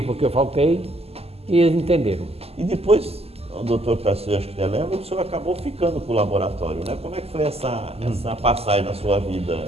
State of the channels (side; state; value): left; late; 0.29 ms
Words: porque eu faltei, e eles entenderam. E depois, o doutor Tarcísio, acho que você lembra, o senhor acabou ficando com o laboratório, né? Como é que foi essa passagem na sua